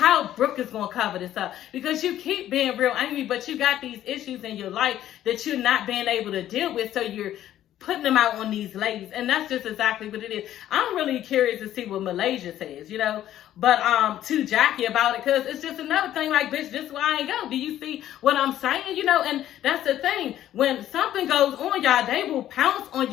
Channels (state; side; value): quieter; right; 12.3 dB